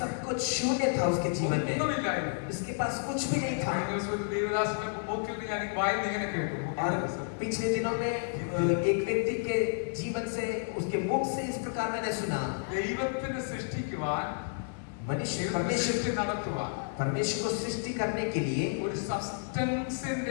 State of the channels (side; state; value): right; silent; 57 dB below the other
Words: कुछ शून्य था उसके जीवन में. ഒന്നുമില്ലായിരുന്നു. उसके पास कुछ भी नहीं था. കഴിഞ്ഞ ദിവസം ഒരു ദേവദാസന്റെ മൂക്കിൽ നിന്ന് ഞാൻ വായിന്ന് ഇങ്ങനെ കേട്ടു. और पिछले दिनों में एक व्यक्ति के जीवन से उसके मुख से इस प्रकार मैंने सुना, ദൈവത്തിനെ സൃഷ്ടിക്കുവാൻ, मनुष्य സൃഷ്ടി നടത്തുവാൻ परमेश्वर को सृष्टि करने के लिए ഒരു